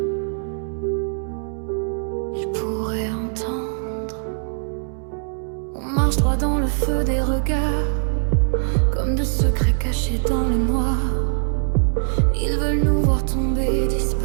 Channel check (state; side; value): silent; left; 64 dB below the other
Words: il pourrait entendre. On marche droit dans le feu des regards, comme de secrets cachés dans le noir. Ils veulent nous voir tomber,